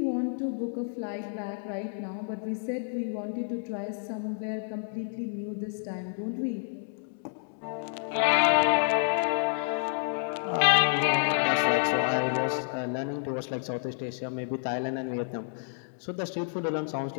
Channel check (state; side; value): silent; right; digital silence